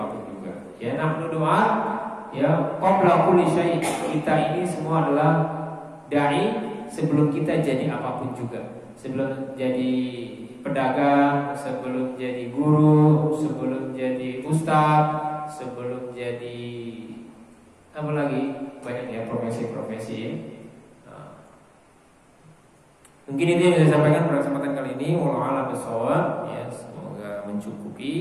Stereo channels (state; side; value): identical; both; correlation 1.00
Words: Ya, nahnu doa, ya, qabla kulli syai'. Kita ini semua adalah dai sebelum kita jadi apapun juga. Sebelum jadi pedagang, sebelum jadi guru, sebelum jadi ustaz, sebelum jadi apa lagi? Banyak ya profesi-profesi ya. Nah, mungkin itu yang bisa saya sampaikan pada kesempatan kali ini. Wallahu a'lam bishawab. Ya, semoga